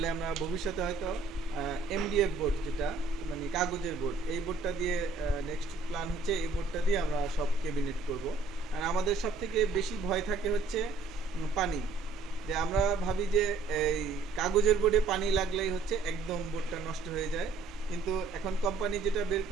আমরা ভবিষ্যতে হয়তো এমডিএফ বোর্ড, যেটা মানে কাগজের বোর্ড, এই বোর্ডটা দিয়ে নেক্সট প্ল্যান হচ্ছে এই বোর্ডটা দিয়ে আমরা সব ক্যাবিনেট করব। আর আমাদের সব থেকে বেশি ভয় থাকে হচ্ছে পানি। যে আমরা ভাবি যে এই কাগজের বোর্ডে পানি লাগলেই হচ্ছে একদম বোর্ডটা নষ্ট হয়ে যায়, কিন্তু এখন কোম্পানি যেটা বের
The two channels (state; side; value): quieter; left; 4.1 dB